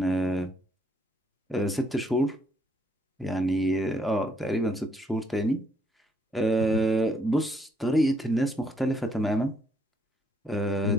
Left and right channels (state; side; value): normal; both; correlation 0.71